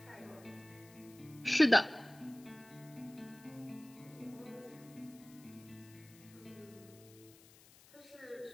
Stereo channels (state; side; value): noise; left; hiss, 23 dB below the sound